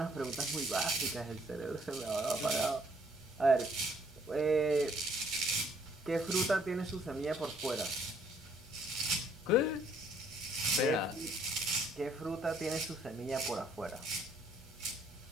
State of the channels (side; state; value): both; normal; correlation 0.64